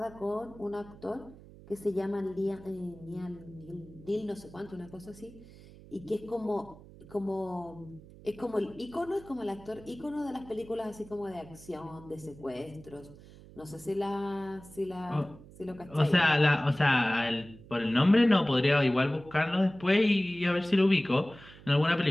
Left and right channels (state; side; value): noise; right; hum, 20 dB below the sound